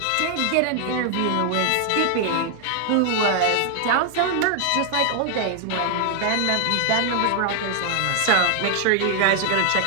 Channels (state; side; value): different; both; correlation 0.00